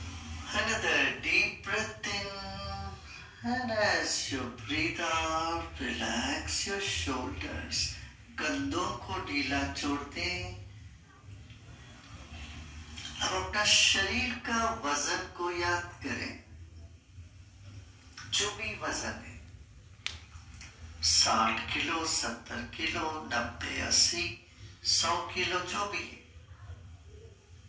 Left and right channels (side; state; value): both; identical; correlation 1.00